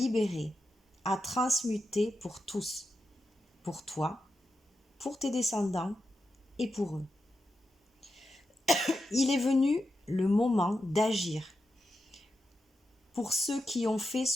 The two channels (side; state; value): both; normal; correlation 0.88